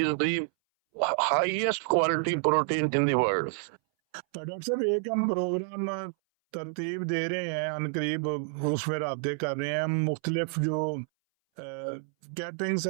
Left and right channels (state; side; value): silent; left; 59 dB below the other